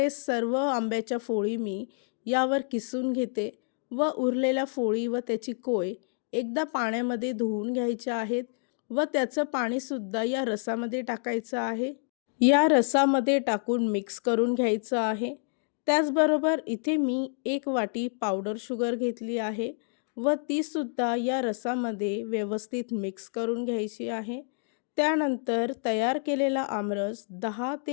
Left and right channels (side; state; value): right; silent; 59 dB below the other